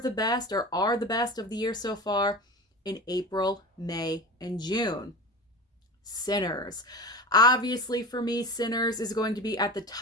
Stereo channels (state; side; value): normal; both; correlation 0.31